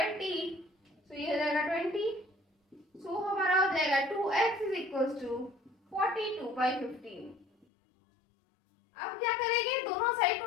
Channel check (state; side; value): drops out; right; at 7.7 s